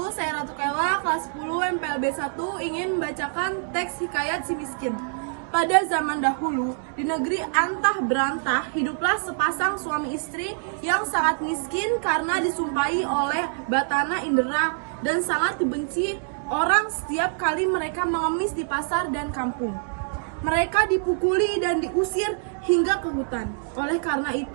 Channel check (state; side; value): silent; left; 62 dB below the other